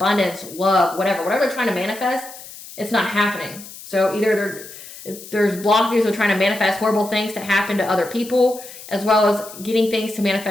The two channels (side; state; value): left; noise; hiss, 15 dB below the sound